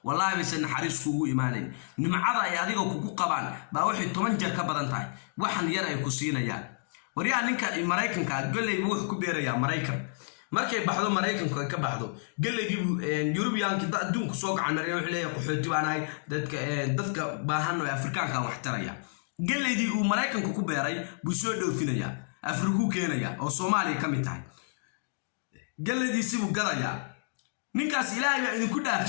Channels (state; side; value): silent; right; digital silence